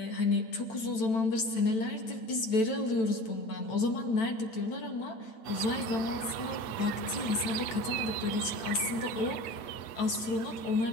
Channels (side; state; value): right; late; 9.0 ms